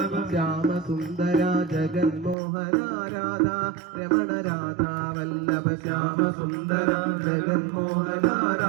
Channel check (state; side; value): drops out; left; at 2.4 s